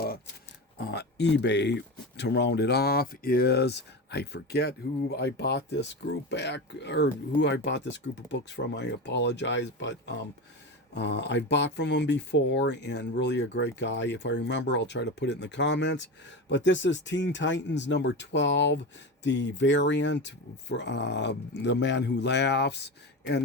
eBay to round it off, is, I forget who I bought this group back, or who I bought this group of books from. I apologize, but I bought from him before, and really a great guy. If I remember, I'll try to put it in the comments. But this is Teen Titans #12, the variant for The Man Who Laughs,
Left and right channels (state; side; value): normal; both; correlation 0.23